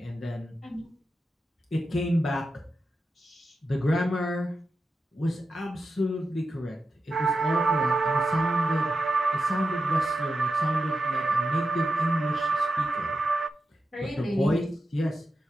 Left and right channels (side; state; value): both; normal; correlation 0.89